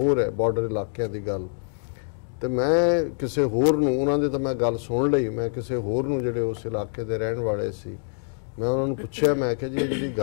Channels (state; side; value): silent; right; digital silence